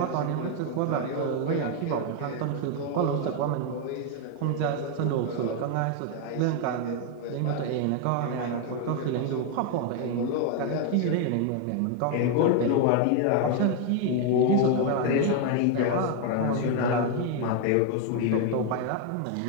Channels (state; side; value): different; both; correlation 0.01